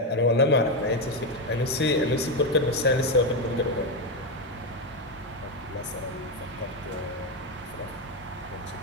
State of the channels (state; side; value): normal; both; correlation 0.08